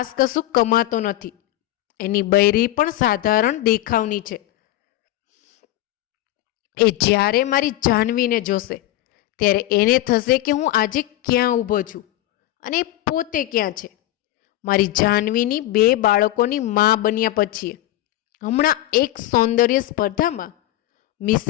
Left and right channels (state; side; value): quieter; right; 15.1 dB